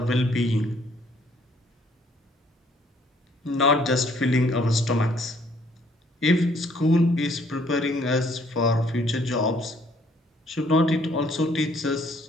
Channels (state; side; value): normal; both; correlation 0.63